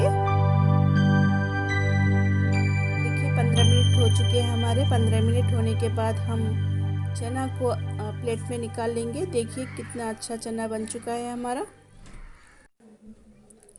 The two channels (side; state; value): both; identical; correlation 1.00